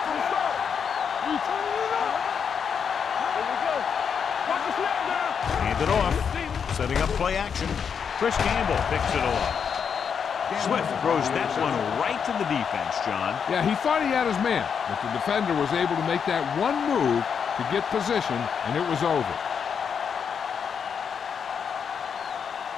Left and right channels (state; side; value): quieter; right; 6.9 dB